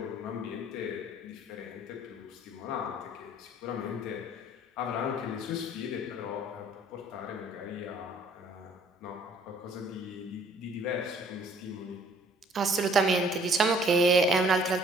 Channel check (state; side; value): normal; both; correlation 0.58